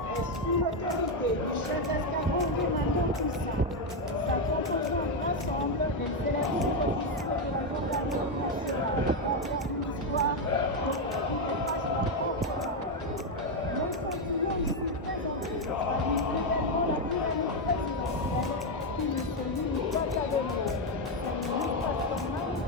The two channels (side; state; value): both; normal; correlation 0.04